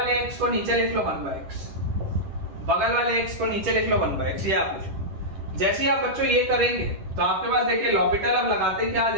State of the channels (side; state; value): left; late; 10 ms